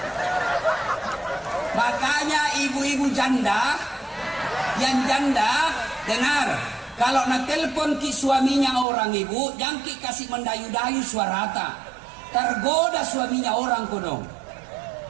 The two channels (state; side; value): drops out; left; at 8.8 s